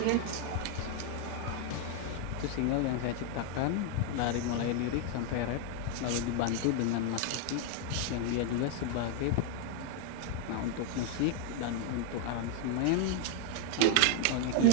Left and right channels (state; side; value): different; both; correlation 0.01